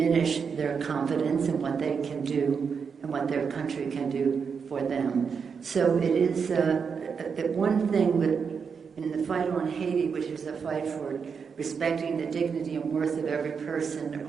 their confidence in what they can do and what their country can do for them. So it is the one thing that in the fight on Haiti, which is a fight for respecting the dignity and worth of every person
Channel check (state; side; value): quieter; left; 6.0 dB